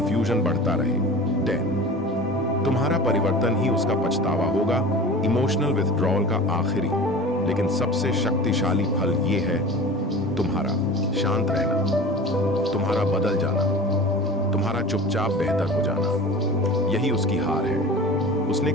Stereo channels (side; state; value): both; normal; correlation 0.37